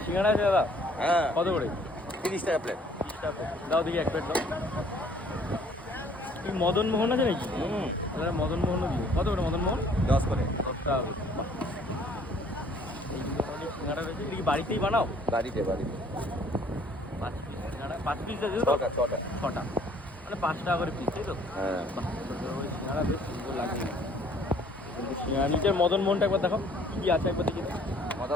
সিঙ্গাড়া আছে দাদা? হ্যাঁ কত করে? 30 টাকা প্লেট। 30 টাকা করে। দাও দেখি এক প্লেট দাও। কি মদন মোহন আছে নাকি? তাহলে মদন মোহনও দিও। কত করে মদন মোহন? 10 করে। 10 টাকা করে। বাহ। এই ধরনের সিঙ্গাড়া রয়েছে, এটা কি বাড়িতেই বানাও? বাড়িতে বাড়িতে 5 পিস সিঙ্গাড়া, 5 পিস আছে তো? ছটা ছটা। 6টা, মানে 5 টাকা করে পিস, তাই তো? হ্যাঁ বাহ, ওই সিঙ্গাড়া বেশ সুন্দর লাগে। কিন্তু সিঙ্গাড়া নিচের মদন মোহনটা একবার দেখো কি কি আছে, একবার দেখি।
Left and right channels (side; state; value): both; normal; correlation 0.58